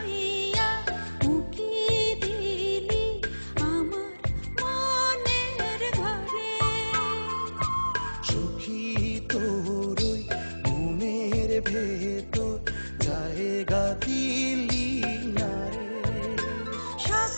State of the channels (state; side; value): inverted; both; correlation -1.00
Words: উকি দিলি আমার মনের ঘরে। সখী তোর ওই মনের ভেতর জায়গা দিলি না রে।